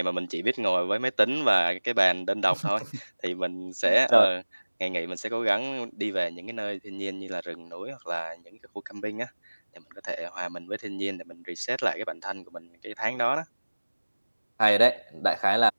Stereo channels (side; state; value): both; inverted; correlation -1.00